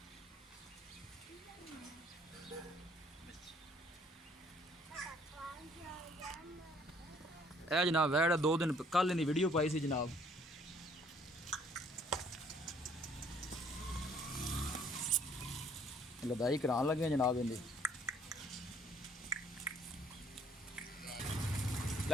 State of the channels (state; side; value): normal; both; correlation 0.61